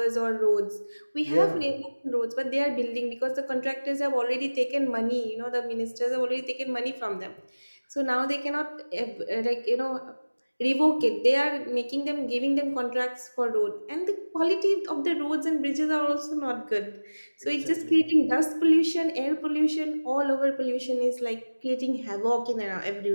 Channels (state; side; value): inverted; both; correlation -1.00